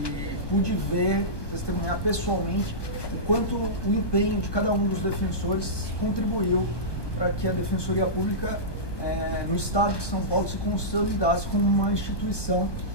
e pude ver, testemunhar pessoalmente o quanto o empenho de cada um dos defensores contribuiu para que a Defensoria Pública no Estado de São Paulo se consolidasse como uma instituição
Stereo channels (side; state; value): right; late; 1.2 ms